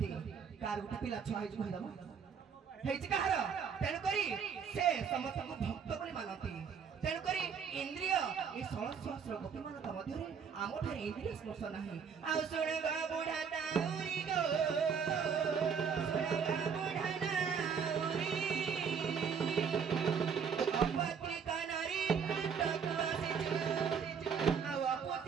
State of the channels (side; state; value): left; quieter; 6.7 dB